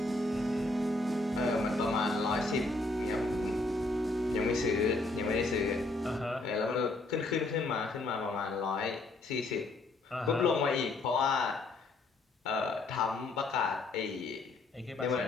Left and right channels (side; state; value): right; quieter; 3.1 dB